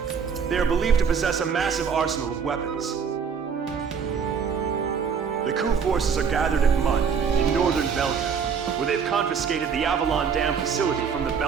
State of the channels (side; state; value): left; quieter; 6.4 dB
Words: They are believed to possess a massive arsenal of weapons. The coup forces are gathered at Mud, in northern Belkan, where they've confiscated the Avalon Dam facility from the